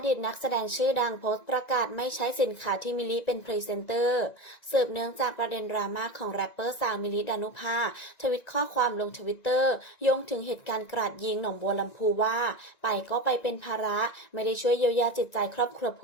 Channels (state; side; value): late; right; 1.9 ms